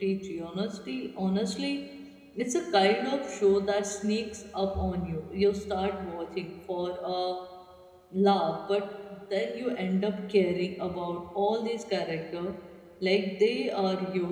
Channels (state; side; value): identical; both; correlation 1.00